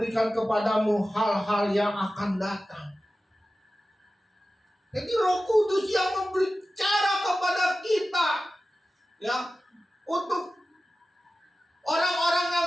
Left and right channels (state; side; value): normal; both; correlation 0.95